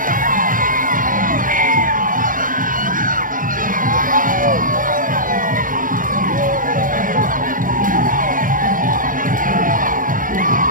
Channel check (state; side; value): late; left; 0.39 ms